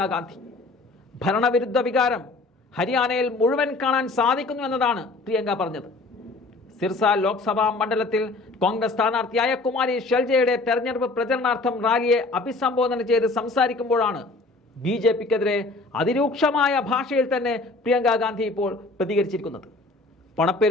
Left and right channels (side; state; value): right; quieter; 3.3 dB